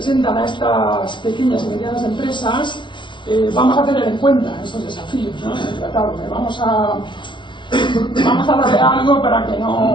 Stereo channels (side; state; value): right; late; 0.23 ms